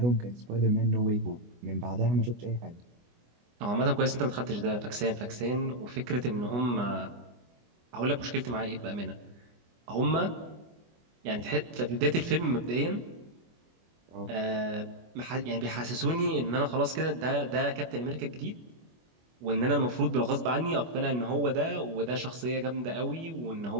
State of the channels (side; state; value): left; late; 24 ms